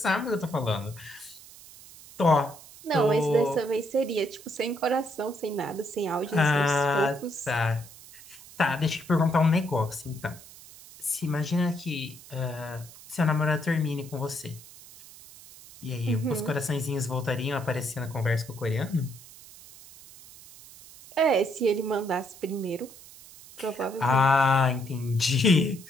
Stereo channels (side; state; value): right; noise; hiss, 19 dB below the sound